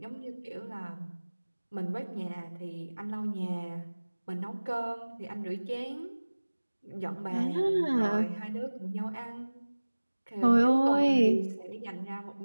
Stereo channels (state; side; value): inverted; both; correlation -1.00